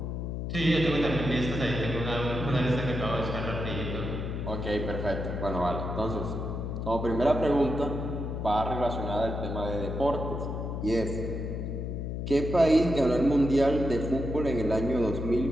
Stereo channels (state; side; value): noise; left; hum, 4 dB below the sound